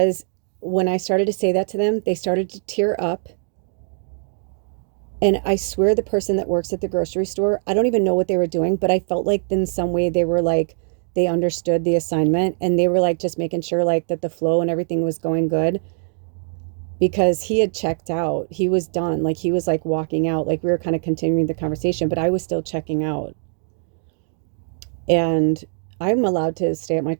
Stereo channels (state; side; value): silent; left; digital silence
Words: when I started to say that to them, they started to tear up. And I swear the person that works at the grocery store, I don't even know what they were doing, but I felt like in some way they were like, they understood the assignment, and they were like just making sure like that the flow and everything was going good, because he had checked out. He was done. Like he was like walking out, like we were kind of continuing the conversation, but I was still checking out. And I'm allowed to stay at my